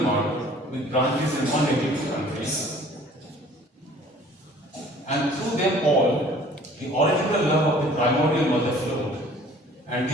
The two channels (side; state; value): both; normal; correlation 0.52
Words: with branches in 182 countries. And through them all, the original love of the primordial mother flowed, and